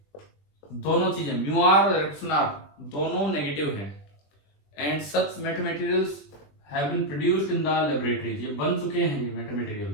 दोनों चीजें म्यू आर और इलेक्ट्रॉन आर दोनों नेगेटिव हैं, and such meta materials have been produced in the laboratories, ये बन चुके हैं, ये मेटा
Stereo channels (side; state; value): right; late; 20 ms